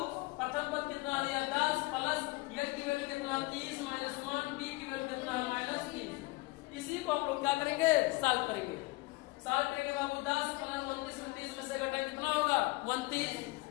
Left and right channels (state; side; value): quieter; right; 23.3 dB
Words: प्रथम पद कितना दिया, 10 प्लस n की वैल्यू कितना, 30 माइनस 1, d की वैल्यू कितना है, -3। इसी को हम लोग क्या करेंगे, सॉल्व करेंगे। सॉल्व करेंगे बाबू, 10 प्लस 29 में 30 में से घटाएंगे कितना होगा,